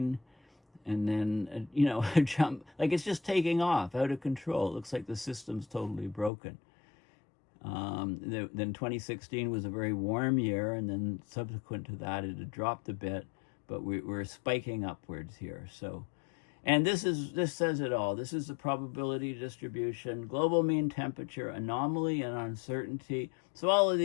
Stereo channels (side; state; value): right; drops out; at 6.3 s